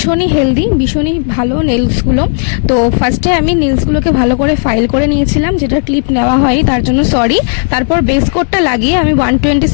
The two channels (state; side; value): silent; right; digital silence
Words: হেলদি, ভীষণই ভালো নেলসগুলো। তো ফার্স্টে আমি নেলসগুলোকে ভালো করে ফাইল করে নিয়েছিলাম, যেটা ক্লিপ নেওয়া হয়নি তার জন্য সরি। তারপর বেস কোটটা লাগিয়ে আমি 120